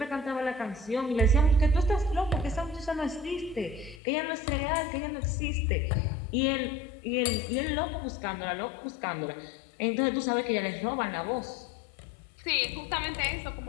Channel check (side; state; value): right; drops out; at 4.0 s